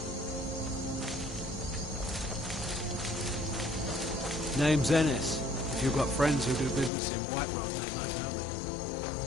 Name's Ennis. If you've got friends who do business in Whiterun, they might know me.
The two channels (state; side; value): drops out; right; at 6.9 s